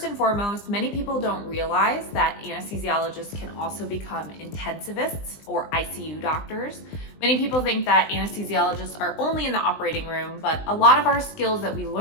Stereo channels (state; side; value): late; right; 20 ms